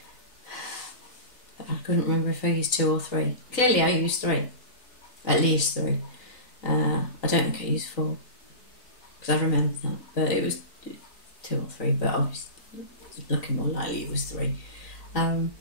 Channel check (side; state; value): right; late; 3.9 ms